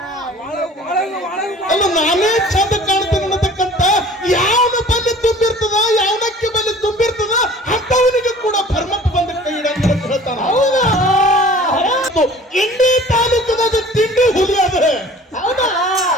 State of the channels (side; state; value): both; normal; correlation 0.47